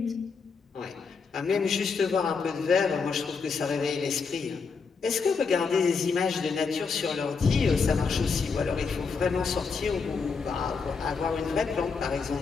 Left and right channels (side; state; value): right; quieter; 5.1 dB